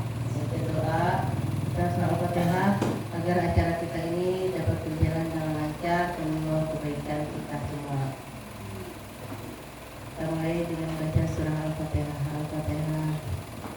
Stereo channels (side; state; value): both; identical; correlation 1.00